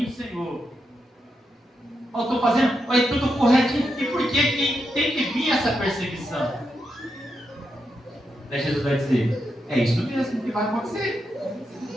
Senhor. Eu estou fazendo tudo corretinho. E por que tem que vir essa perseguição? Daí Jesus vai dizer: é isso mesmo que vai acontecer.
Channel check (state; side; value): normal; both; correlation 0.84